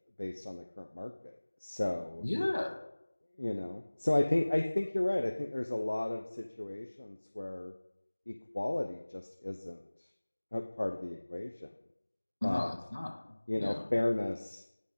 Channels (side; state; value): both; inverted; correlation -1.00